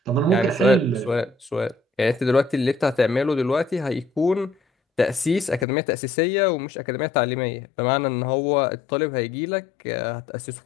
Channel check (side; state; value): right; drops out; at 5.7 s